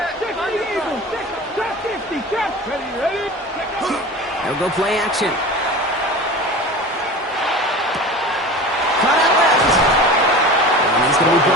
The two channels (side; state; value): both; normal; correlation 0.34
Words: They'll go play action. Cut out left. And he's going to be